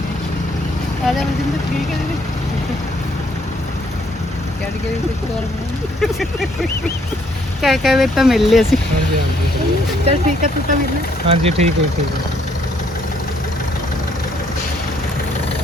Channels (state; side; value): normal; both; correlation 0.67